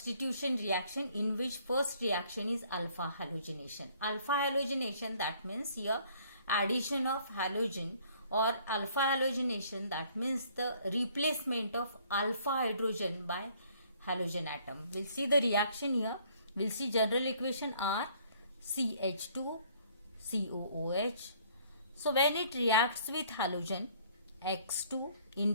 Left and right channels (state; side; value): inverted; both; correlation -0.60